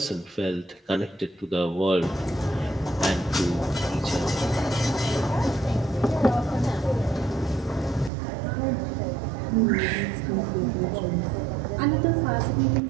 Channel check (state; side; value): drops out; left; at 8.1 s